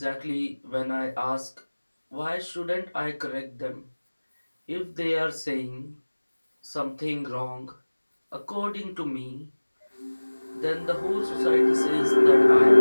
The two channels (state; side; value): inverted; both; correlation -1.00